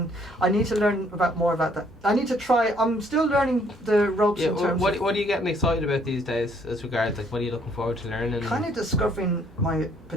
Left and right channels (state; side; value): normal; both; correlation 0.64